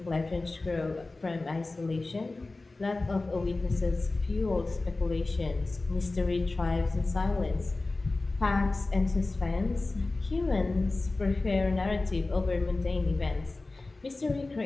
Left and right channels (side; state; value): right; quieter; 3.2 dB